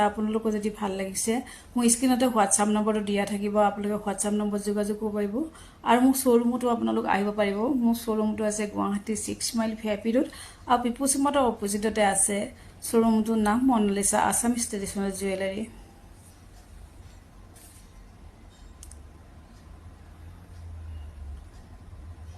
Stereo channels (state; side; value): identical; both; correlation 1.00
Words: আপোনালোকক যদি ভাল লাগিছে মোৰ স্ক্ৰিনতে হোৱাটছআপ নম্বৰটো দিয়া থাকিব। আপোনালোকে হোৱাটছআপ নম্বৰ যোগাযোগ কৰিব পাৰিব আৰু মোৰ শ্বৰুমতো আপোনালোক আহিব পাৰিব। মোৰ শ্বৰুমটো আছে গুৱাহাটী 6 মাইল ভিআইপি ৰোড আৰু পিপুলছ মটৰ অপজিটতে আছে। শ্বৰুমটোৰ নাম মনালিসা আছামিজ ট্ৰেডিশ্যনেল জুৱেলাৰী।